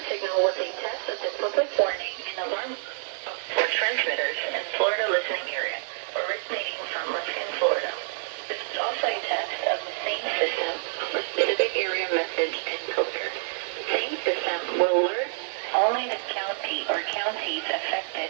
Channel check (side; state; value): left; silent; digital silence